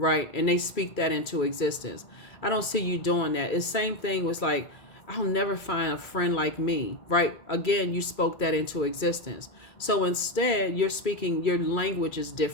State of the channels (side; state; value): right; late; 2.3 ms